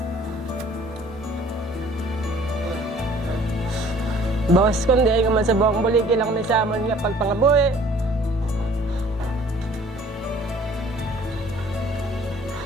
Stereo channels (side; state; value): both; normal; correlation 0.54